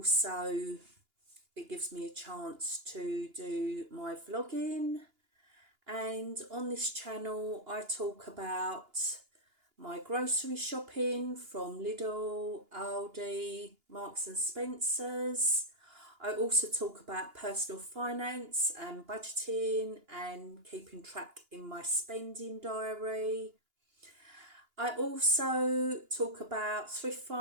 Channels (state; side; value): late; left; 2.9 ms